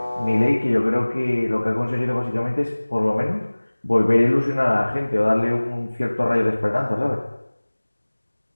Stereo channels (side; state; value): both; inverted; correlation -1.00